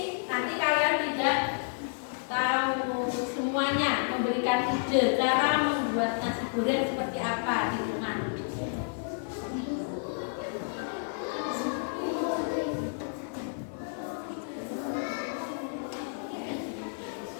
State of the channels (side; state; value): right; silent; 57 dB below the other